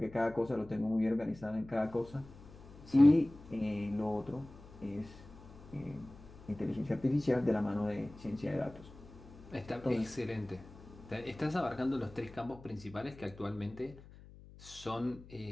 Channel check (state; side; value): noise; left; hum, 19 dB below the sound